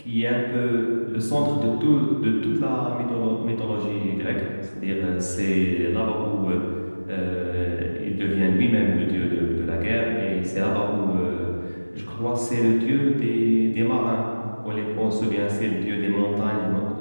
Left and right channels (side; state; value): both; inverted; correlation -1.00